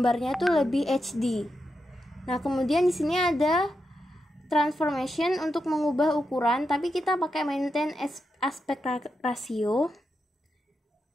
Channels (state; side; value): normal; both; correlation 0.86